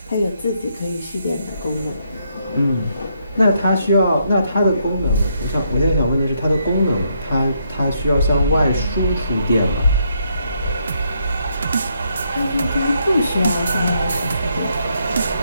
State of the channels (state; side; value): inverted; both; correlation -0.75